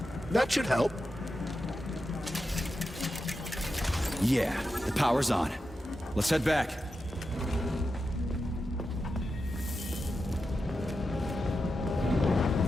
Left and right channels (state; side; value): normal; both; correlation 0.89